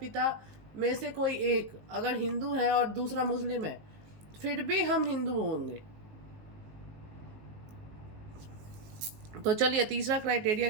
में से कोई एक अगर हिंदू है और दूसरा मुस्लिम है, फिर भी हम हिंदू होंगे। तो चलिए तीसरा क्राइटेरिया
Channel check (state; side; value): late; left; 19 ms